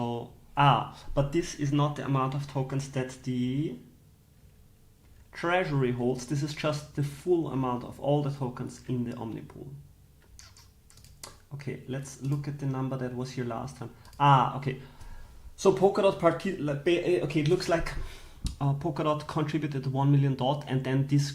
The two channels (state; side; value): identical; both; correlation 1.00